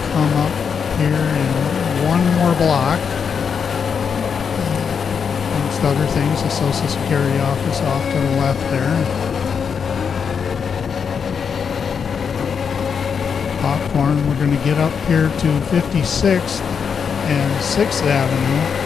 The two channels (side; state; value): right; quieter; 6.6 dB